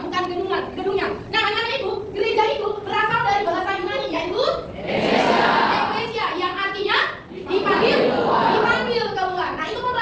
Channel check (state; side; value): identical; both; correlation 1.00